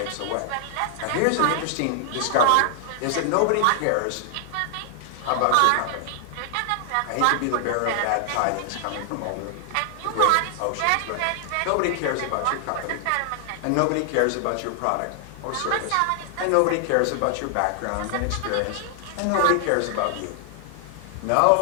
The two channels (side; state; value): both; different; correlation 0.00